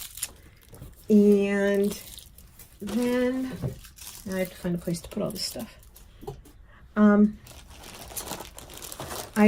and then I have to find a place to put all this stuff.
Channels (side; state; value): both; identical; correlation 1.00